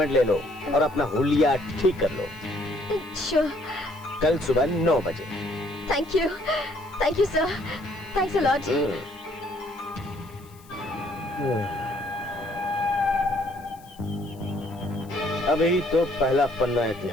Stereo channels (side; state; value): left; noise; hiss, 26 dB below the sound